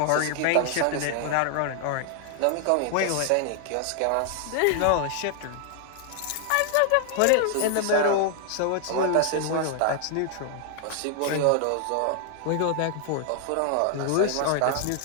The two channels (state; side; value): different; both; correlation 0.00